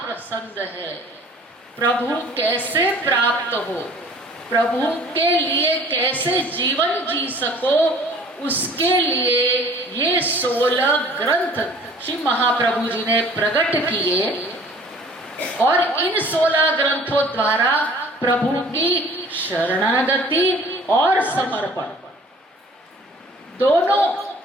पसंद है, प्रभु कैसे प्राप्त हो, प्रभु के लिए कैसे जीवन जी सको, उसके लिए ये 16 ग्रंथ श्री महाप्रभु जी ने प्रकट किए। और इन 16 ग्रंथों द्वारा प्रभु की शरणागति और समर्पण दोनों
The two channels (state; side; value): normal; both; correlation 0.50